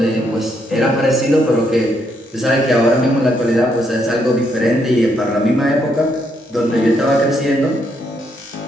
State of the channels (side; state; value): both; normal; correlation 0.75